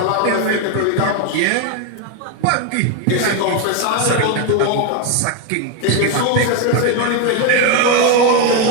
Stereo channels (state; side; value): different; both; correlation 0.02